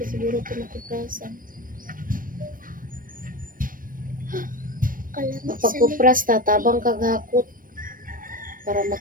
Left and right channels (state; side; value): late; left; 0.40 ms